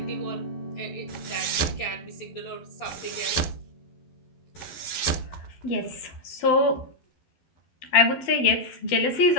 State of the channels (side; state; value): right; late; 12 ms